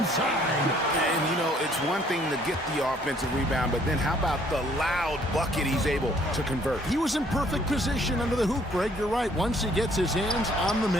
And, you know, it's one thing to get the offensive rebound, but then how about the loud bucket he's able to convert? He was in perfect position under the hoop, Greg. You're right. Once he gets his hands on the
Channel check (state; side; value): normal; both; correlation 0.62